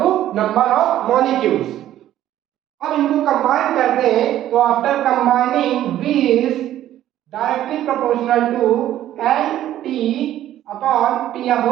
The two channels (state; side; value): quieter; left; 12.6 dB